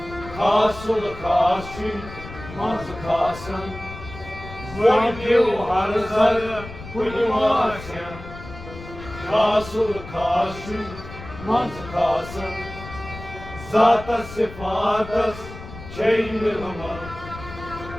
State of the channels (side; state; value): left; noise; rumble, 14 dB below the sound